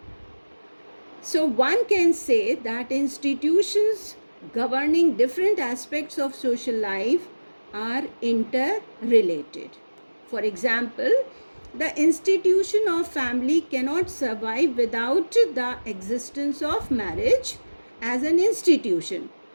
So one can say that institutions governing different aspects of social life are interrelated. For example, the institution of family cannot survive without the existence of marriage as an institution,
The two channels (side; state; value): both; inverted; correlation -1.00